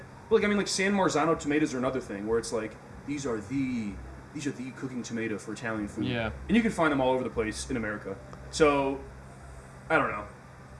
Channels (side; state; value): both; identical; correlation 1.00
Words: But like I mean, like San Marzano tomatoes are another thing where it's like these are the cooking tomato for Italian food. Yeah. And you can find them all over the place in America. So I don't know.